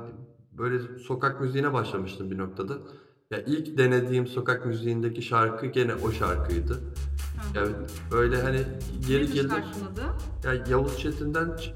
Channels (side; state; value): both; identical; correlation 1.00